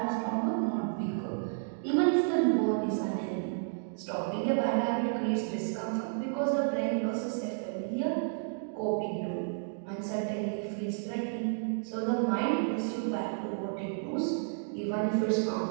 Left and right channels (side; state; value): left; silent; digital silence